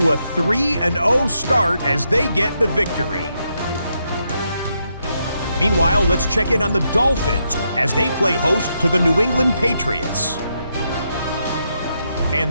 a 3-0 start as they get the victory. Meanwhile, let's check in on the Dolphins as they play host to the New England Patriots.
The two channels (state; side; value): inverted; both; correlation -0.81